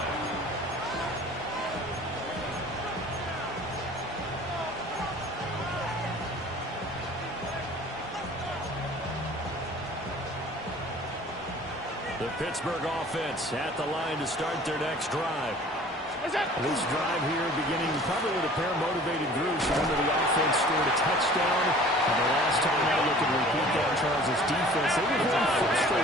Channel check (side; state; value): both; normal; correlation 0.47